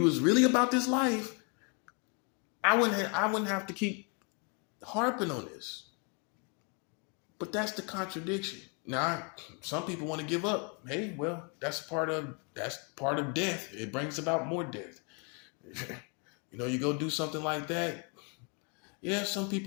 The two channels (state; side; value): quieter; right; 35.7 dB